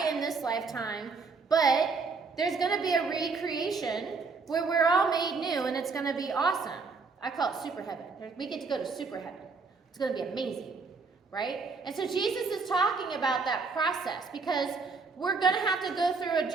in this lifetime, but there's going to be a recreation where we're all made new, and it's going to be awesome. I call it super heaven. We get to go to super heaven. It's going to be amazing, right? And so Jesus is talking about that process because we're going to have to go through a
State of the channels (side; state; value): left; quieter; 4.5 dB